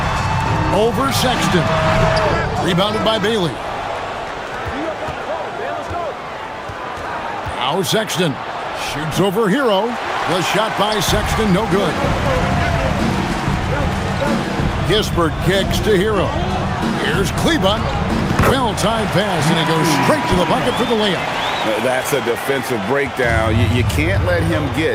Over Sexton. Rebounded by Bailey. Now Sexton shoots over Hero. The shot by Sexton, no good. Kispert kicks to Hero. Here's Kleba. Well-timed pass, and it goes straight to the bucket for the layup. That's a defensive breakdown. You can't let him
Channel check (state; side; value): identical; both; correlation 1.00